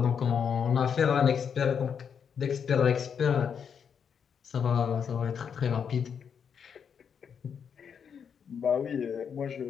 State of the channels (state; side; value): quieter; right; 7.2 dB